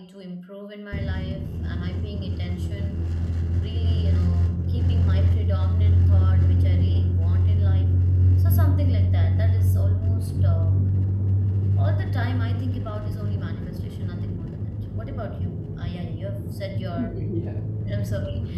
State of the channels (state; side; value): identical; both; correlation 1.00